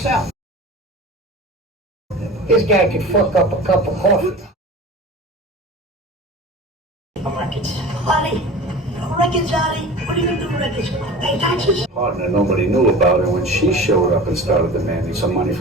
This guy could fuck up a cup of coffee. Records. Honey, records, Johnny. What are you gonna do with records? Pay taxes? Partner nobody knew about her when she showed up and started demanding some money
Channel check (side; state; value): both; normal; correlation 0.36